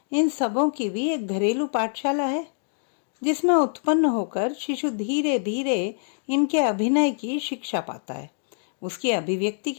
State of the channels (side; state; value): right; silent; digital silence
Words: इन सबों की भी एक घरेलू पाठशाला है, जिसमें उत्पन्न होकर शिशु धीरे धीरे इनके अभिनय की शिक्षा पाता है। उसकी अभिव्यक्ति